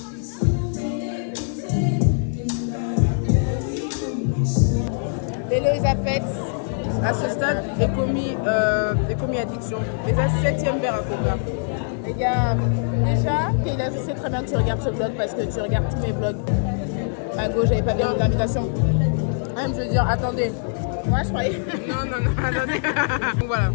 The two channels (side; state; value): right; silent; digital silence